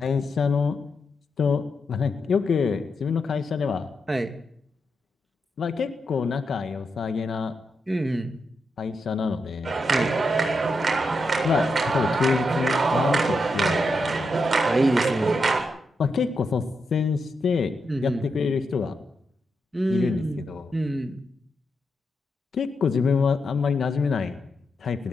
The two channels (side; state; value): both; normal; correlation 0.84